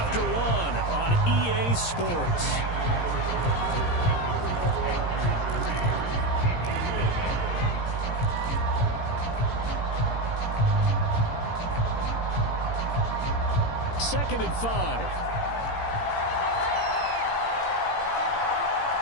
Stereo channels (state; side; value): late; right; 17 ms